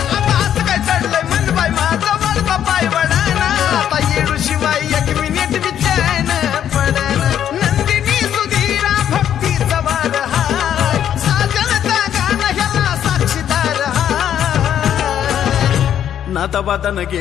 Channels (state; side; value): quieter; right; 10.0 dB